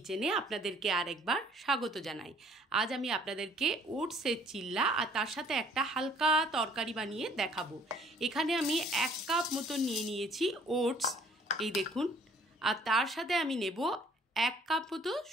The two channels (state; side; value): normal; both; correlation 0.58